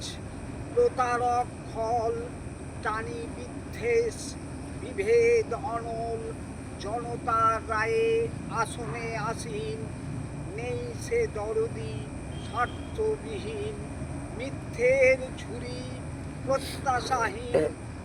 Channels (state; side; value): identical; both; correlation 1.00